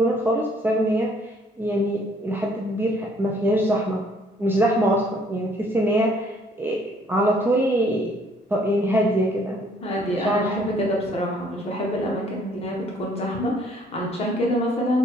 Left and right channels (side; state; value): both; normal; correlation 0.62